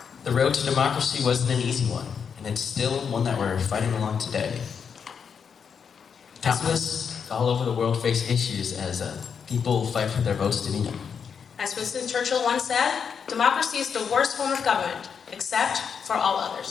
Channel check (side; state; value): right; quieter; 6.7 dB